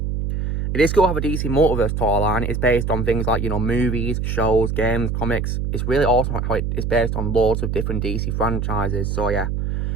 it is cool to have a DC Multiverse toy line. It's based on things like, you know, movies, shows, games, comics. It's really awesome how it is based on loads of different DC franchises. So, yeah.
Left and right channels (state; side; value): noise; right; hum, 1 dB below the sound